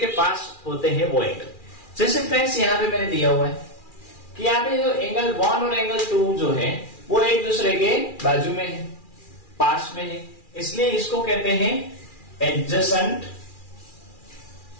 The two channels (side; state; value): right; late; 2.4 ms